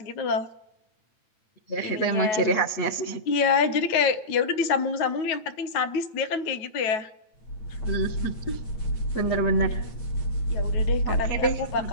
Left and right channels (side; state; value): right; late; 8.8 ms